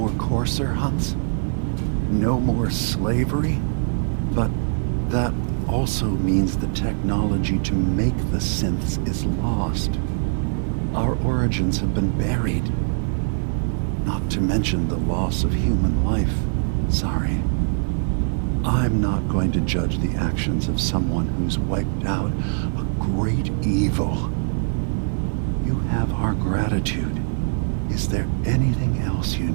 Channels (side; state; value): left; silent; 64 dB below the other